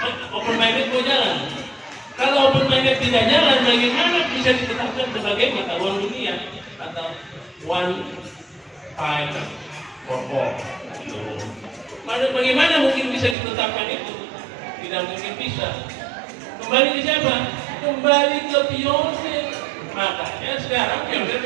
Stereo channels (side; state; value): left; drops out; at 13.4 s